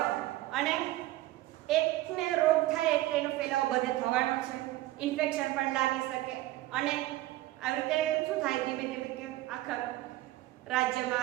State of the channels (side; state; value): left; quieter; 16.7 dB